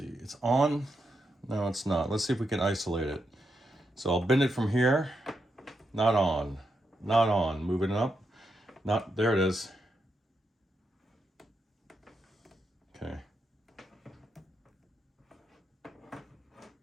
on. No, it's not. Let's see if we can isolate it. So I'll bend it from here. Not on. Not on. Moving it up. Not, there it is. Okay.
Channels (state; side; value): normal; both; correlation 0.84